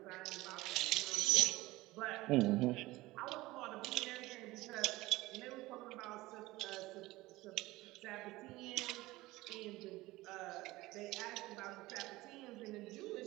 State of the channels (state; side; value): quieter; left; 19.2 dB